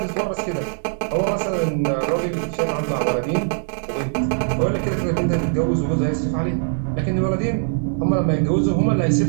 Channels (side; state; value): left; silent; digital silence